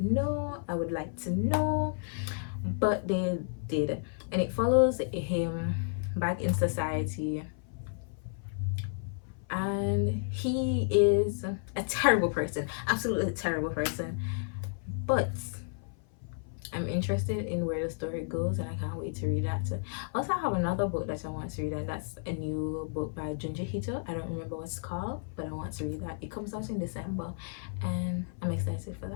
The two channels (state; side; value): silent; right; 55 dB below the other